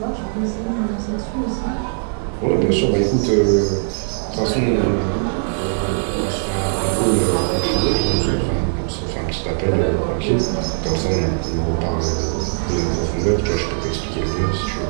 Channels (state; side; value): silent; left; 59 dB below the other